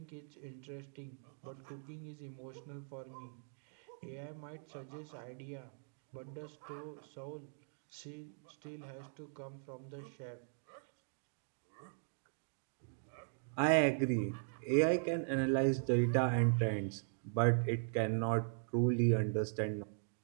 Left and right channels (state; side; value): silent; left; digital silence